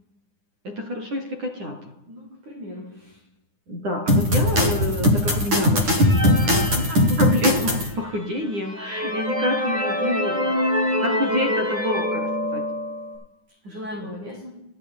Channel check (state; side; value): late; left; 9.8 ms